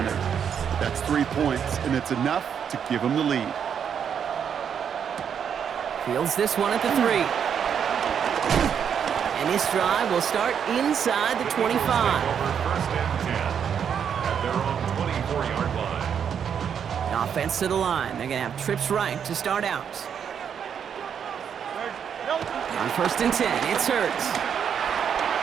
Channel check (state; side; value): quieter; left; 7.8 dB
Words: That's 3 points, and it's enough to give him the lead. Fields this one at the 3. And this drive will start inside the 25. First and 10 at their own 24-yard line. Offense to the line. They're going to have trips right to start out. On first and 10, it's Hurts.